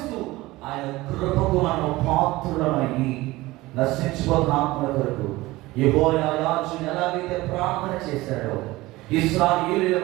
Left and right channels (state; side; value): quieter; left; 19.4 dB